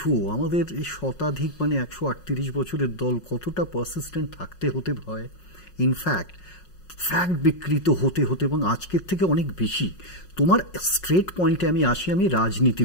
আমাদের এই শতাধিক মানে 138 বছরের দল কতটা পারসিস্টেন্ট থাকতে হতে হয়। ইনফ্যাক্ট ফ্যাক্ট বিকৃত হতে হতে এবং আজকের থেকে অনেক বেশি। তোমার স্ট্রেট পয়েন্টে আমি আসি, আমি রাজনীতি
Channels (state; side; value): late; right; 5.5 ms